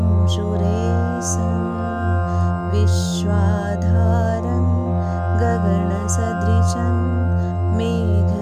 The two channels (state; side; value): identical; both; correlation 1.00